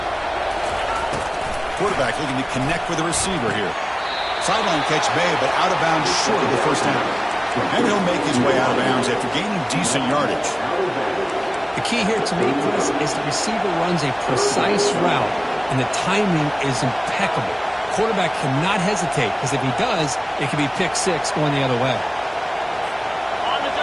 Quarterback looking to connect with the receiver here. Sideline catch made, but out of bounds short of the first down. And he'll make his way out of bounds after gaining decent yardage. The key here to me, Chris, is the receiver runs a precise route, and the timing is impeccable. Quarterback cannot hesitate, because if he does, it could be pick six going the other way.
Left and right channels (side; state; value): both; identical; correlation 1.00